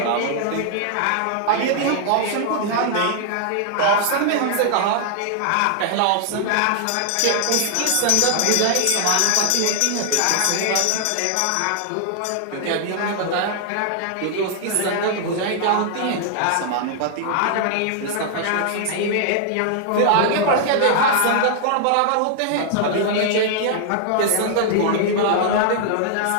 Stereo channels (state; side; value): different; both; correlation 0.00